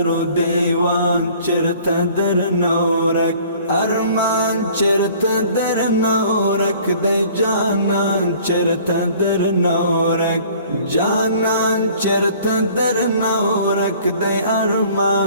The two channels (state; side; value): inverted; both; correlation -0.52